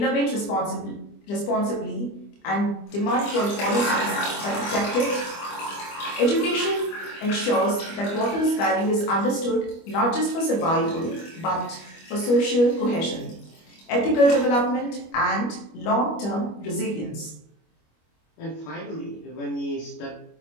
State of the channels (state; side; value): late; right; 25 ms